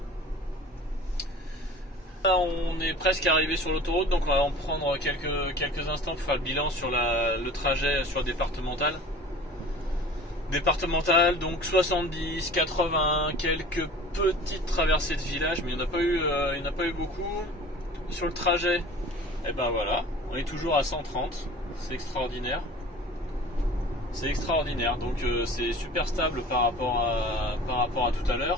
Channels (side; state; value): both; normal; correlation 0.42